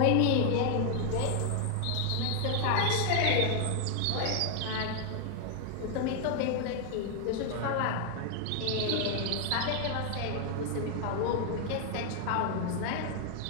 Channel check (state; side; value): different; both; correlation 0.00